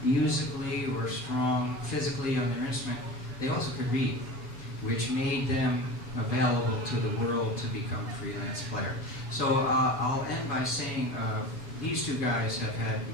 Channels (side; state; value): right; late; 7.8 ms